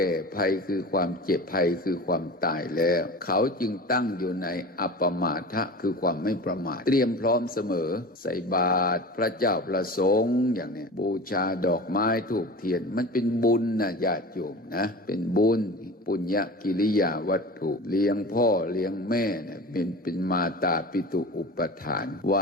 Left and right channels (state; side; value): normal; both; correlation 0.34